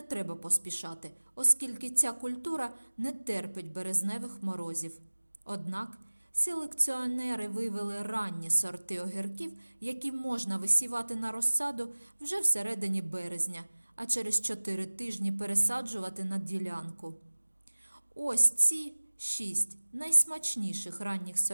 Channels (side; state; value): both; inverted; correlation -1.00